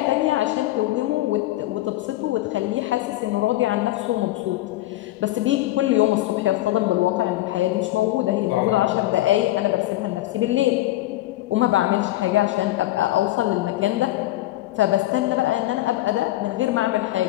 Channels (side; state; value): right; quieter; 16.2 dB